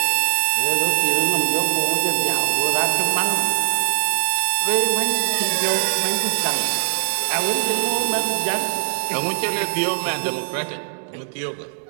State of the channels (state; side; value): silent; left; digital silence